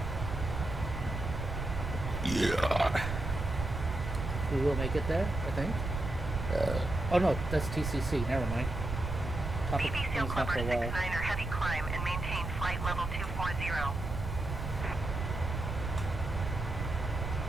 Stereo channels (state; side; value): noise; right; rumble, 4 dB below the sound